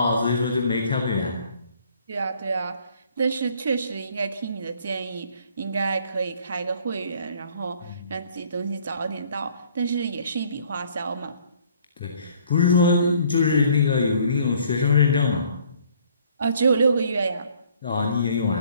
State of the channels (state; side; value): inverted; both; correlation -0.60